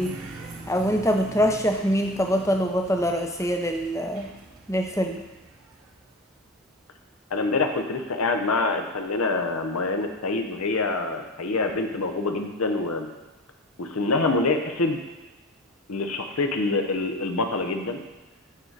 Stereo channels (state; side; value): normal; both; correlation 0.32